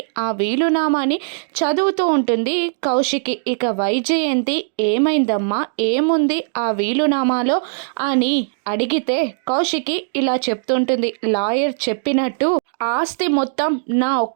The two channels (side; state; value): left; silent; digital silence